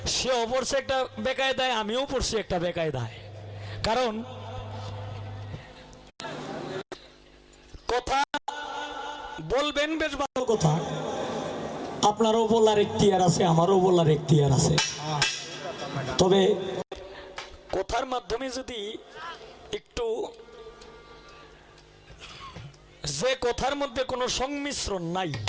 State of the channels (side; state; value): both; identical; correlation 1.00